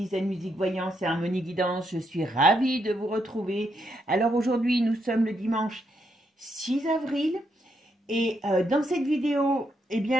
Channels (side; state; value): both; normal; correlation 0.79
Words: Zen Musique Voyance et Harmonie Guidance. Je suis ravie de vous retrouver. Alors aujourd'hui, nous sommes le dimanche 6 avril et dans cette vidéo, eh